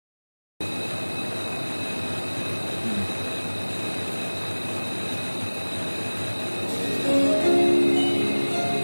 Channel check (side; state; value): both; inverted; correlation -1.00